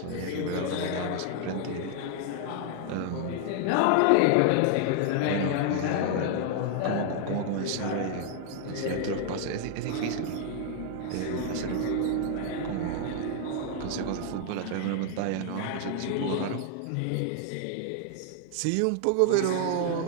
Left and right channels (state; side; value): different; both; correlation 0.00